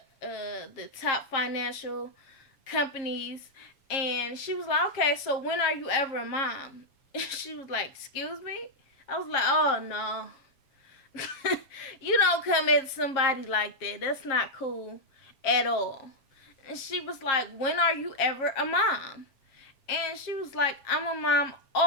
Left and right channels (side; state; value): right; late; 7.4 ms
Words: top financial companies. And she was like, okay, so when are you ever a mom? She was like, excuse me? I was like, oh no. You don't come at somebody like that. That's not cool at all. And she was like, when are you ever a mom? And she was like, I'm a mom